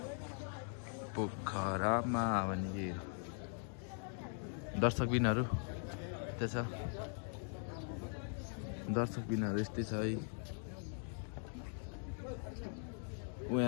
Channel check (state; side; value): silent; right; 50 dB below the other